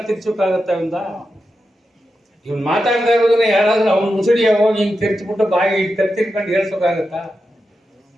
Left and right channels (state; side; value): normal; both; correlation 0.89